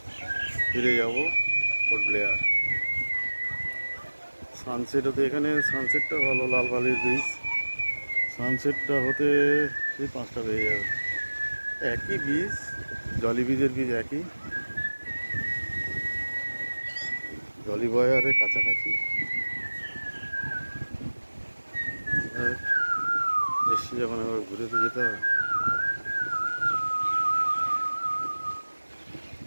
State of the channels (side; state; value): both; inverted; correlation -1.00